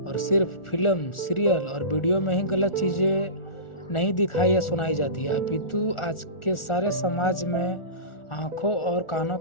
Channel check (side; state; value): right; late; 1.4 ms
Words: सिर्फ फिल्म, सीरियल और वीडियो में ही गलत चीज़ें नहीं दिखाई या सुनाई जाती है, अपितु आज के सारे समाज में आंखों और कानों